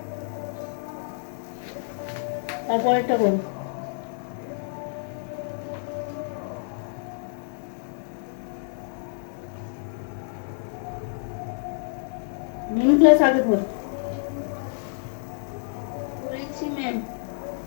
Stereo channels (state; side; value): silent; right; digital silence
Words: তারপরেরটা করো। মেন ক্লাস আগে ধর, করেছি ম্যাম।